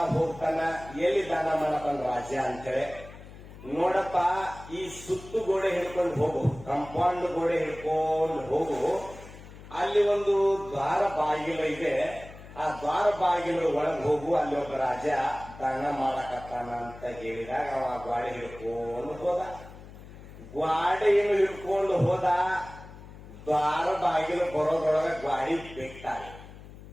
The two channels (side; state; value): left; noise; hum, 17 dB below the sound